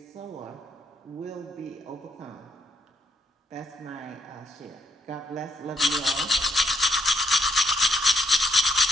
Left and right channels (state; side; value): normal; both; correlation 0.75